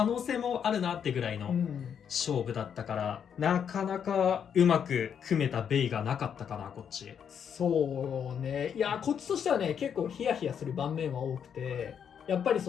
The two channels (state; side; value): quieter; right; 7.9 dB